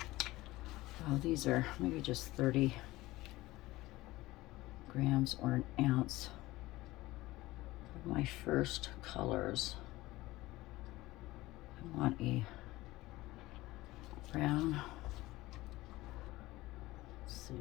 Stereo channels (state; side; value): quieter; right; 18.5 dB